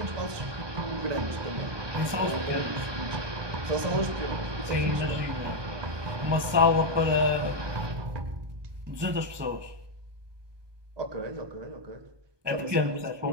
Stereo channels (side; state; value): left; late; 1.2 ms